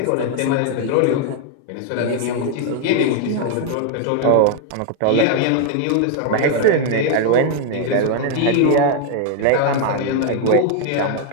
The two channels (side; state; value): both; different; correlation 0.00